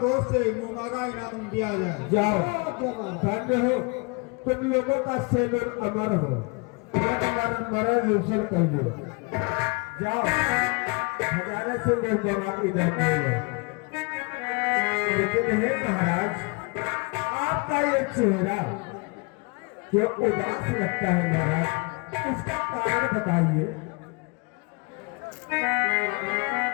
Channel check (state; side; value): quieter; right; 31.0 dB